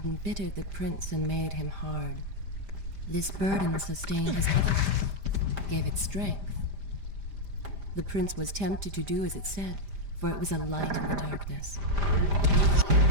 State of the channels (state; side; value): late; left; 5.0 ms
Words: embittered the prince and made him hard. This burden sustained his health, gave it strength. The prince was tempted to do as it said, for it was a light in the darkness.